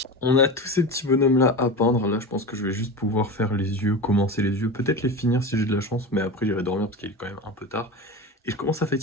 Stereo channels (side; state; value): both; normal; correlation 0.26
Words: On a tous ces petits bonhommes-là à peindre. Là, je pense que je vais juste pouvoir faire les yeux, commencer les yeux, peut-être les finir si j'ai de la chance, mais après, j'irai dormir parce qu'il est quand même un peu tard. Et je commence à